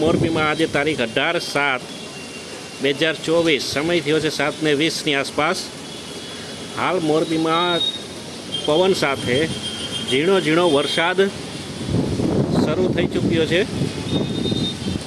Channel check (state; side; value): identical; both; correlation 1.00